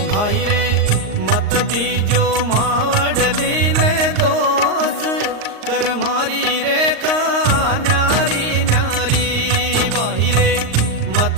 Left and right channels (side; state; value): left; late; 38 ms